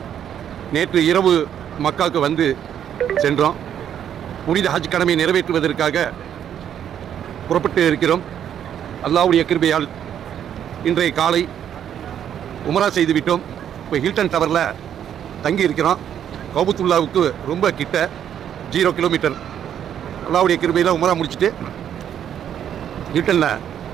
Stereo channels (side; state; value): left; quieter; 9.5 dB